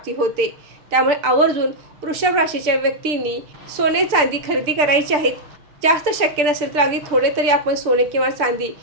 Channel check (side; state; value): left; late; 6.8 ms